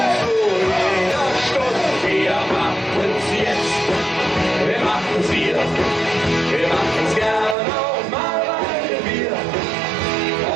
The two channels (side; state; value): left; drops out; at 7.6 s